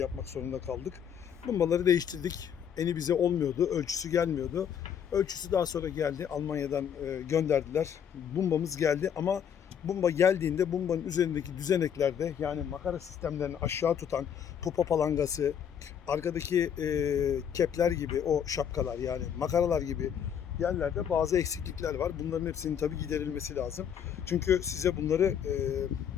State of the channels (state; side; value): quieter; right; 8.4 dB